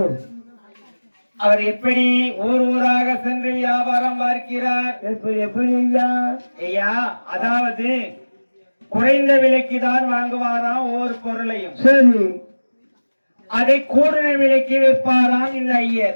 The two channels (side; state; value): both; inverted; correlation -1.00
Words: அவர் எப்படி ஊர் ஊராக சென்று வியாபாரம் பார்க்கிறார். எப்படி ஐயா? அதாவது குறைந்த விலைக்கு தான் வாங்குவாராம் ஒவ்வொரு பொருளையும், அதை கூடுதல் விலைக்கு விற்பாராம் இந்த